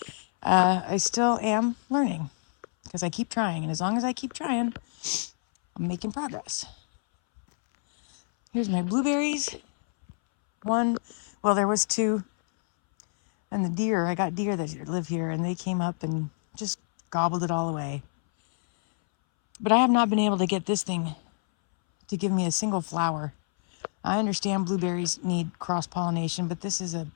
I still am learning because I keep trying. And as long as I keep trying, I'm making progress. Here's my blueberries. Well, there was 2. And the deer, I got deer that live here, and they came up and just gobbled it all away. But I have not been able to get this thing to give me a single flower. I understand blueberries need cross-pollination, but this is a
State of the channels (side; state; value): right; silent; 60 dB below the other